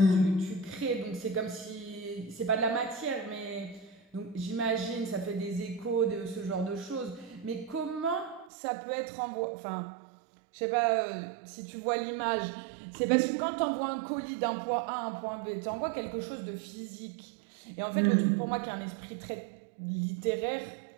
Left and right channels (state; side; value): drops out; left; at 8.5 s